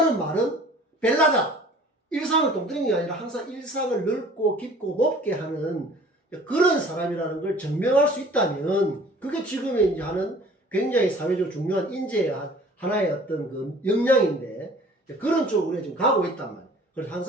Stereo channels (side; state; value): both; normal; correlation 0.49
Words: 말은 벨라다. 일상을 똥뜨리는 게 아니라 항상 일상을 넓고 깊고 높게 하는 그런 사람이라는 걸 증명할 수 있다면 그게 지금의 이제 하는 굉장히 사회적으로 중요한 인재의 하나의 어떤 그 역량인데 그런 쪽으로 우리가 지금 가고 있단 말이에요. 그래서